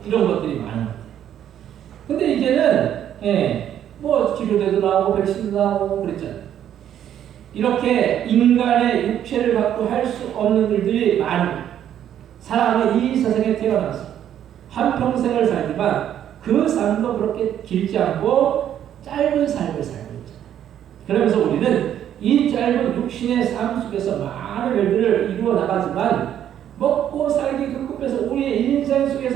이런 것들이 많은 거예요. 근데 이제는 뭐 치료제도 나오고 백신도 나오고 그랬잖아요. 이렇게 인간의 육체를 갖고 할 수 없는 일들이 많은 사람이 이 세상에 태어나서 한평생을 살지만 그 삶도 그렇게 길지 않고 짧은 삶을 살고 있잖아요. 그러면서 우리는 이 짧은 육신의 삶 속에서 많은 일들을 이루어 나가지만 먹고 살기 급급해서 우리의 인생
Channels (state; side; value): quieter; left; 10.4 dB